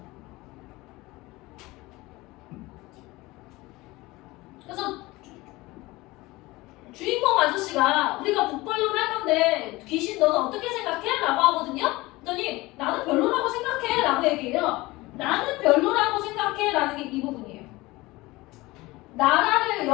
그래서 주인공 아저씨가 우리가 북벌론 할 건데 귀신 너는 어떻게 생각해? 라고 하거든요. 그랬더니 나는 별로라고 생각해 라고 얘기해요. 나는 별로라고 생각해 라는 게 이 부분이에요. 나라를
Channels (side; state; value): right; quieter; 20.7 dB